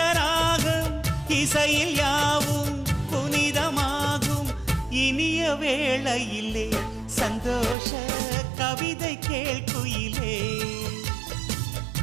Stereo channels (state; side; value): drops out; left; at 7.8 s